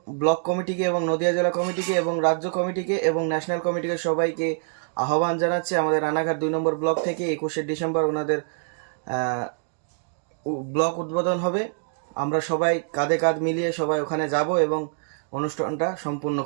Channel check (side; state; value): left; silent; digital silence